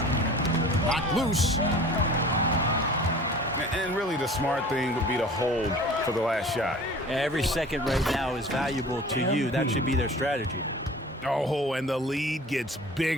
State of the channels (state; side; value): normal; both; correlation 0.43